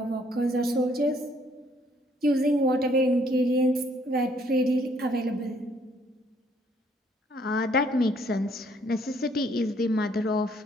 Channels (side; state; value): both; normal; correlation 0.65